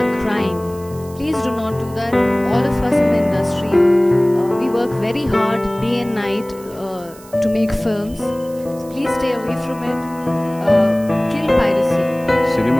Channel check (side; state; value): right; noise; hiss, 22 dB below the sound